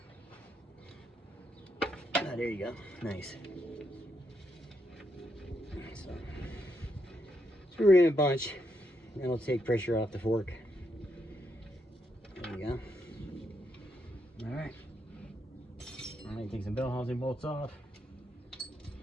Ah, there you go. Nice. So screw it in a bunch. That'll take pressure off the fork. There you go. All right. All right, take some bell housing bolts off.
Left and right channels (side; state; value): both; normal; correlation 0.79